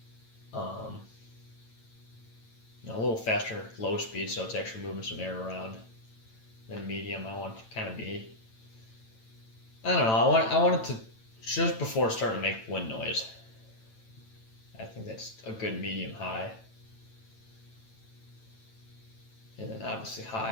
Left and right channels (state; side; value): late; right; 9.0 ms